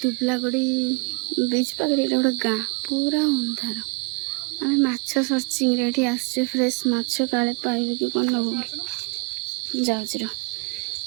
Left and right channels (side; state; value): left; quieter; 34.2 dB